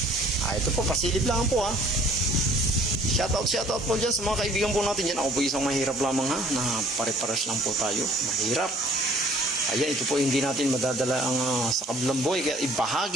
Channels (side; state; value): both; normal; correlation 0.55